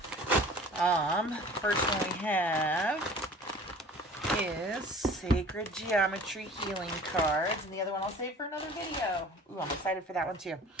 First one we have is Sacred Geometry Healing Cards, and the other one I'll save for another video. Ooh, I'm excited for that one too.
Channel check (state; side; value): normal; both; correlation 0.45